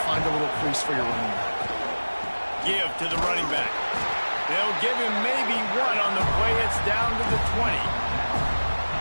find a little crease for your running back. Give to the running back. They'll give him maybe 1 on the play. It's down to the 20.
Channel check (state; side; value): inverted; both; correlation -1.00